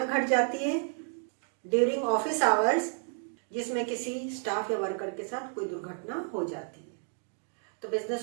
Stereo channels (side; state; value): left; silent; 57 dB below the other